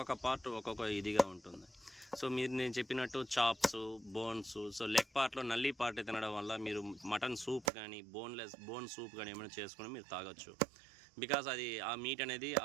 పార్ట్ ఒక్కొక్క ఇదిగా ఉంటుంది. సో మీరు నేను చెప్పినట్టు చాప్స్, బోన్స్, సో లెగ్ పార్ట్లో నల్లి పార్ట్ తినడం వల్ల మీరు మటన్ సూప్ కానీ బోన్ సూప్ కానీ ఏమైనా చేసుకుని మీరు తాగొచ్చు. బికాస్ అది ఆ మీట్ అనేది,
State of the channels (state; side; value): drops out; left; at 7.7 s